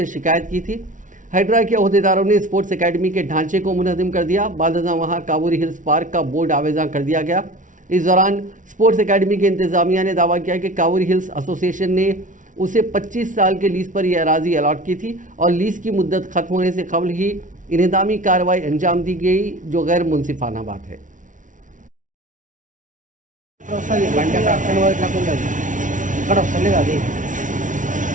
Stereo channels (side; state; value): left; late; 0.37 ms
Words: शिकायत की थी। हाइड्रा के अहदेदारों ने स्पोर्ट्स अकेडमी के ढांचे को मुनहदिम कर दिया। बादशाह वहां कावूरी हिल्स पार्क का बोर्ड आवेजा कर दिया गया। इस दौरान स्पोर्ट्स अकेडमी के इंतजामिया ने दावा किया कि कावूरी हिल्स एसोसिएशन ने उसे 25 साल के लीज पर यह अराजी अलॉट की थी और लीज की मुद्दत खत्म होने से कबल ही इन्हदामी कार्रवाई अंजाम दी गई, जो गैर मुनसिफाना बात है।